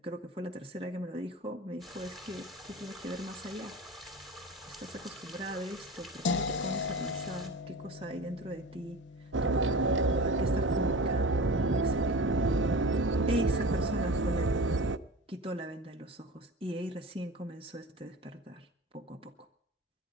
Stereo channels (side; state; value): both; normal; correlation 0.33